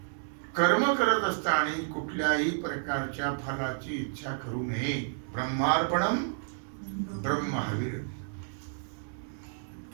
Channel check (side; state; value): left; silent; digital silence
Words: कर्म करत असताना कुठल्याही प्रकारच्या फलाची इच्छा करू नये. ब्रह्मार्पणम ब्रह्महविर,